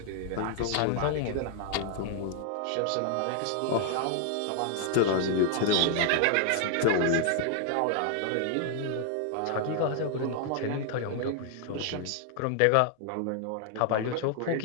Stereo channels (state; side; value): different; both; correlation 0.00